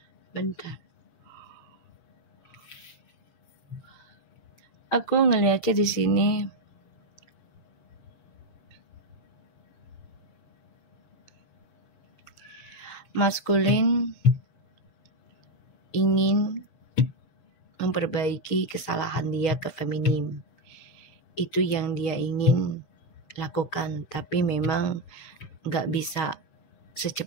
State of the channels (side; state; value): right; late; 6.7 ms